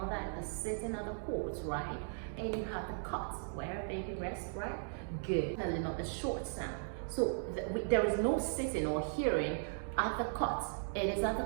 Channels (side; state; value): left; silent; digital silence